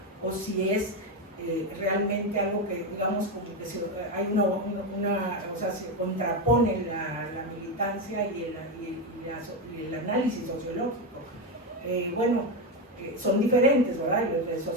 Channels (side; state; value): both; normal; correlation 0.11